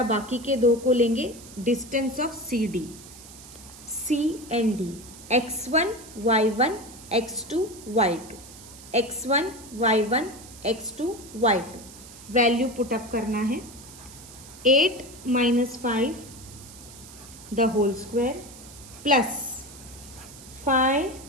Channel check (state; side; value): noise; right; hiss, 18 dB below the sound